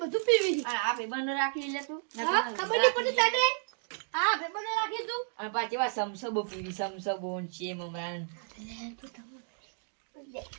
બધું પીવી અને આ ભાઈબંધો રાખી લે તું. હા ખબર નહીં પડી તને હા પેપર રાખી તું અને પાછી વા સમસબો પીવી, સમસબો ને છે મમરાન.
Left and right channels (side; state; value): left; silent; 56 dB below the other